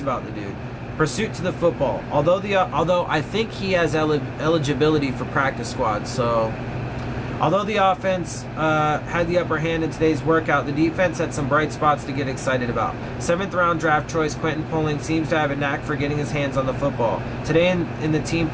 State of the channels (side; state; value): both; identical; correlation 1.00